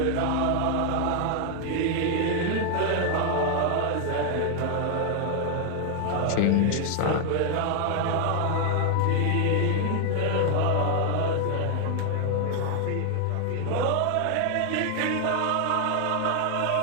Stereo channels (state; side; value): different; both; correlation 0.00